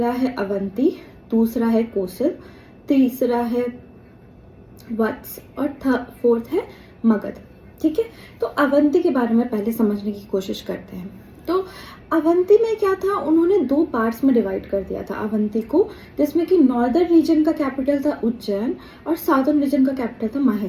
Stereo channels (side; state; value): both; identical; correlation 1.00